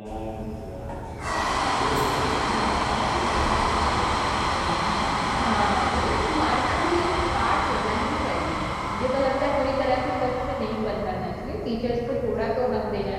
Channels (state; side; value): identical; both; correlation 1.00